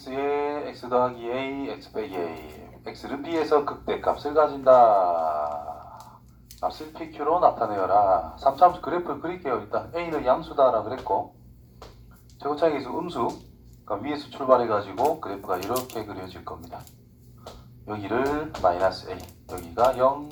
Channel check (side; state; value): both; identical; correlation 1.00